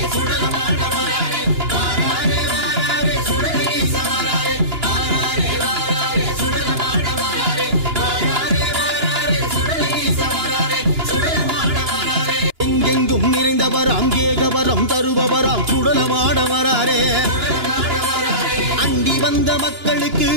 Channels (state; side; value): late; left; 2.9 ms